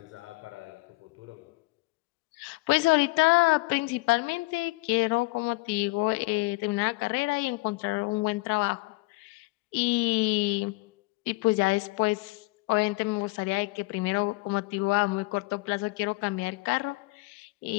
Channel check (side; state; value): right; quieter; 23.8 dB